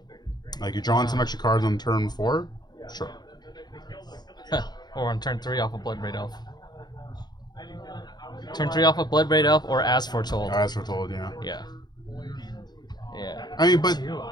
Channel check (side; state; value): right; late; 0.20 ms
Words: Like you're drawing some extra cards on turn 4. Sure. Huh. Or on turn 3 off of Bloodbraid Elf. Turn 3 off of Bloodbraid Elf or As Foretold. As foretold, yeah. Yeah. Yeah. I mean, but